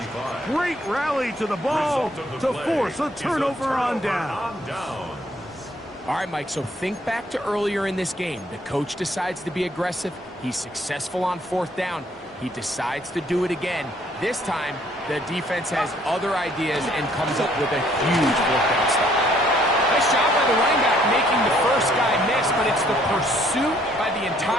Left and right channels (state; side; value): normal; both; correlation 0.64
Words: Great rally to the ball to force a turnover on down. All right, Mike, so think back to earlier in this game. The coach decides to be aggressive. He's successful on fourth down. He decides to do it again. This time, the defense has other ideas and comes up with a huge fourth down stop. Nice job by the running back making the first guy miss, but it's the pursuit by the